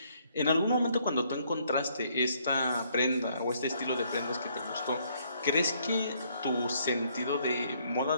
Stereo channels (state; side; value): inverted; both; correlation -0.68